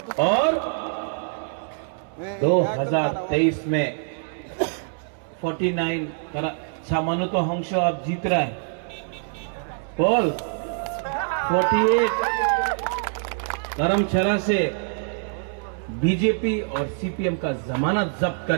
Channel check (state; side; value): silent; left; digital silence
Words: और 2023 में 49 सामान्य तो हंस अब जीत रहा है। बोल 48 धर्मशाला से बीजेपी और सीपीएम का जमानत जब्त